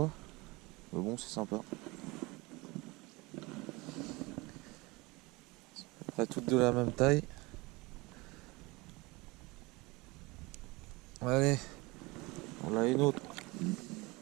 Mais bon, c'est sympa. C'est à peu près toutes de la même taille. Allez, on a une autre.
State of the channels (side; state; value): left; quieter; 23.8 dB